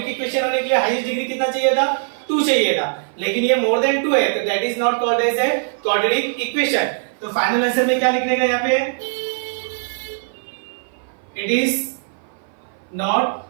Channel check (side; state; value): left; silent; 56 dB below the other